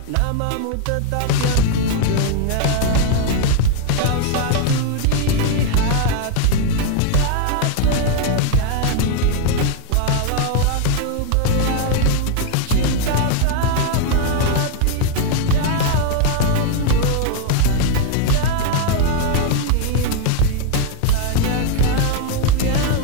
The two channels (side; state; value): both; different; correlation 0.01